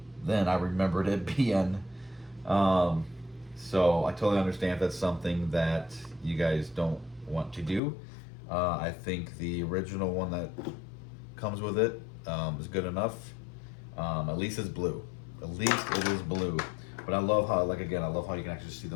than I remembered it being. So I totally understand if that's something that you guys don't want to do. I think the original one that comes with it is good enough. At least it's blue. At least it is blue. But I love how, I love how you can actually see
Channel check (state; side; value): drops out; right; at 7.8 s